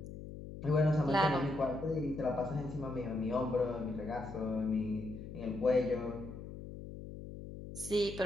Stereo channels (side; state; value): left; noise; hum, 11 dB below the sound